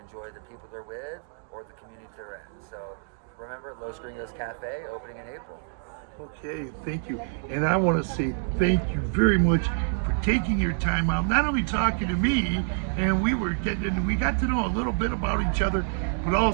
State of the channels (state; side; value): silent; left; digital silence